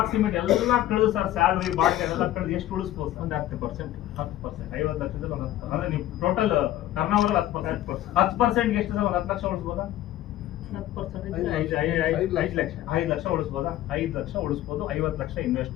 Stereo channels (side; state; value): right; quieter; 13.8 dB